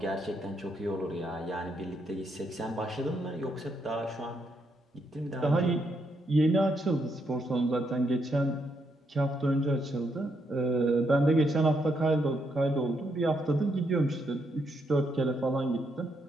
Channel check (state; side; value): normal; both; correlation 0.77